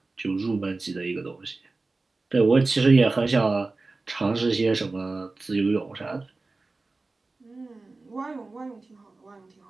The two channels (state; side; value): quieter; left; 3.5 dB